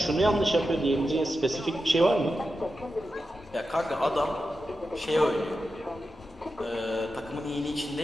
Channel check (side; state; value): both; normal; correlation 0.90